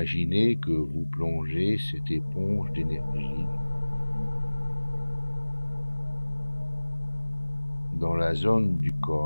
que vous plongez cette éponge d'énergie dans la zone du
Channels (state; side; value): inverted; both; correlation -1.00